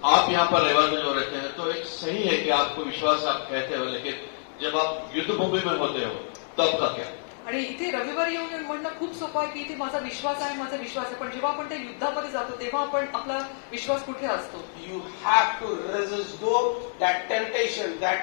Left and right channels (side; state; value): right; silent; digital silence